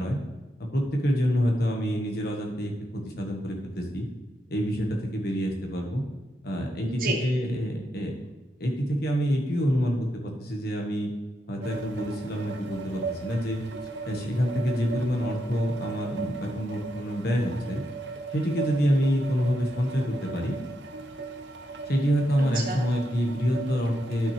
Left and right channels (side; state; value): both; normal; correlation 0.83